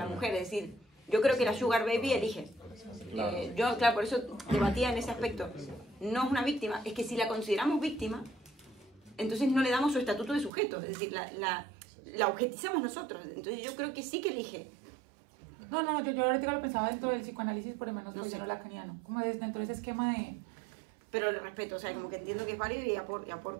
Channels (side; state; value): left; drops out; at 10.5 s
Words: mujer, es decir, yo creo que la Sugar Baby elige. Yo, claro, por eso debatía en ese aspecto. No es una víctima, es que si la consideramos víctima, entonces no le damos su estatuto de sujeto, es decir, la objetizamos nosotros. Entonces yo creo que sí que elige. No, yo ahorita lo pensaba dentro del psicoanálisis, por lo menos No sé. lacaniano, como es dentro de ese esquema de... Pero lo respeto, o sea, como que entiendo que es válido y